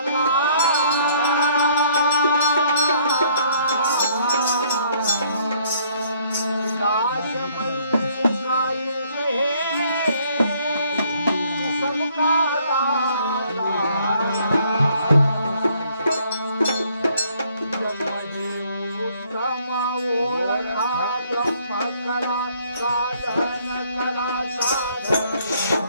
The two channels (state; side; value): inverted; both; correlation -0.64